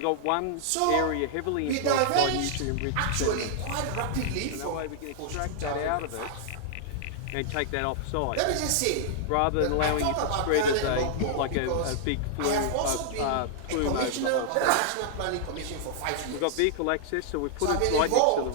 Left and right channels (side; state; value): both; different; correlation -0.01